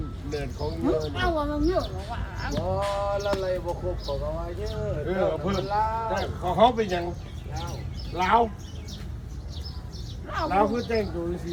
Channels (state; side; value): identical; both; correlation 1.00